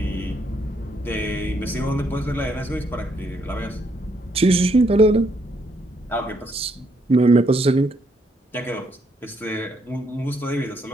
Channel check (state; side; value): normal; both; correlation 0.73